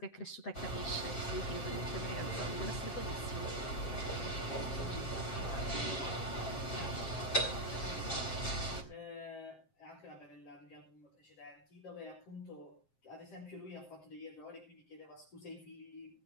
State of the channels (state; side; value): late; right; 7.5 ms